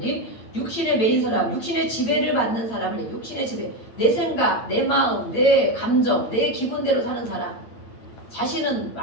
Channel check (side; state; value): right; late; 8.8 ms